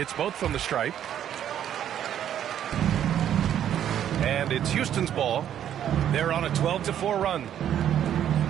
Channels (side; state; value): left; quieter; 10.3 dB